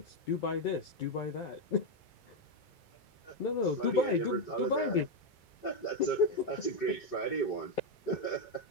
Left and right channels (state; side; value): late; right; 2.3 ms